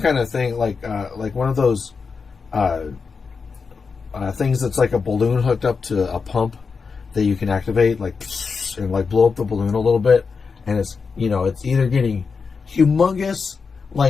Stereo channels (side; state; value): right; quieter; 5.1 dB